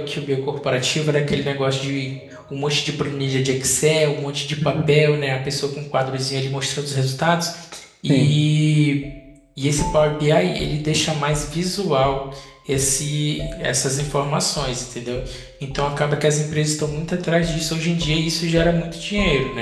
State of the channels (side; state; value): both; identical; correlation 1.00